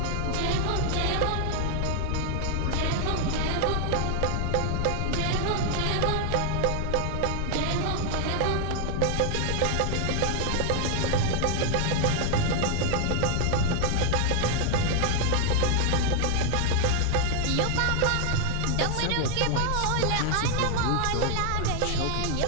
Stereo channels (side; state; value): both; different; correlation 0.00